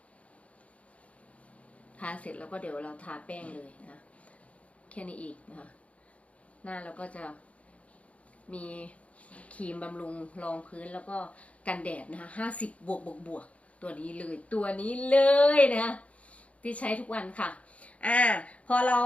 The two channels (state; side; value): late; right; 0.065 ms